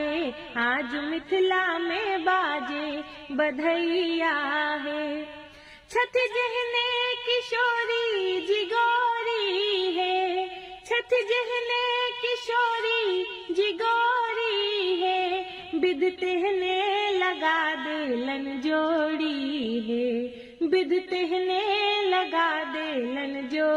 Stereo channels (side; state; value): both; identical; correlation 1.00